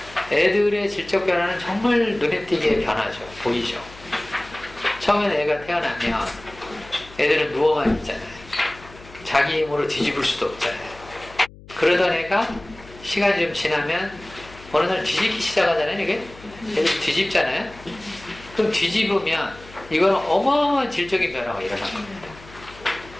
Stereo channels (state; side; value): noise; left; hum, 20 dB below the sound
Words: 애들의 질적 변화는 정말 눈에 띄게 변하죠. 보이죠. 처음에는 애가 태어나면 애들은 누워만 있잖아요. 자기 힘으로 뒤집을 수도 없잖아요. 그러던 애가 시간이 좀 지나면 어느 날 뒤집기 시작하잖아요. 이게 애들 뒤집잖아요. 그럼 뒤집으면 이거는 어마어마한 질적인 변화가 일어난 겁니다.